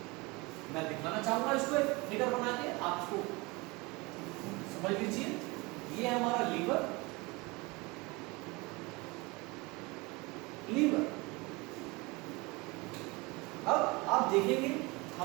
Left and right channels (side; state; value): left; quieter; 25.0 dB